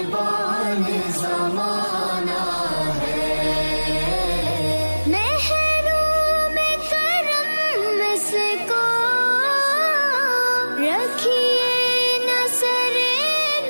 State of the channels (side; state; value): both; inverted; correlation -1.00